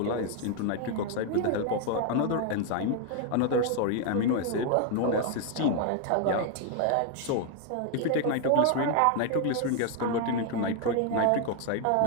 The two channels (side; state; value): both; different; correlation 0.01